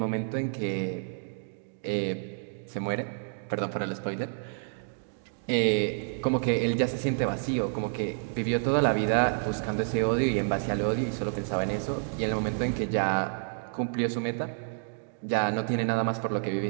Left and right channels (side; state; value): left; silent; digital silence